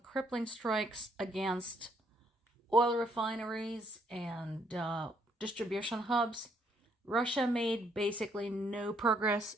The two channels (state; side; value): normal; both; correlation 0.70